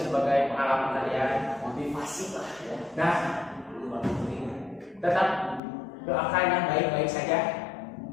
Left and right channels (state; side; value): drops out; right; at 5.6 s